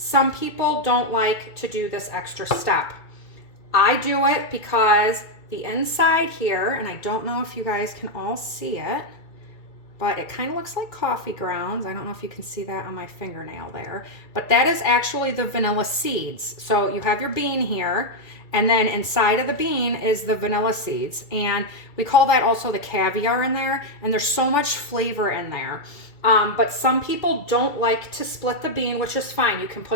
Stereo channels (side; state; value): right; late; 2.3 ms